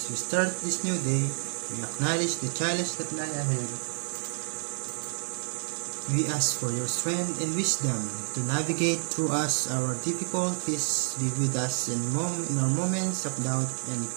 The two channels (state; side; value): silent; left; digital silence